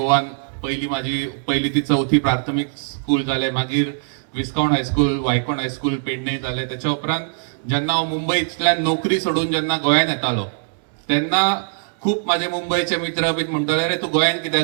माझी पहिली ती 4थी प्राथमिक स्कूल जाले. मागीर विस्काउंट हायस्कूल, वायकोण हायस्कूल पेडणे जालें. त्याच्या उपरांत जेन्ना हांव मुंबयतल्यान नोकरी सोडून जेन्ना गोंयांत येतालो तेन्ना खूप माझे मुंबईचे मित्र बीन म्हणटाले, अरे तू गोंयांत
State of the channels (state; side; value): silent; left; 65 dB below the other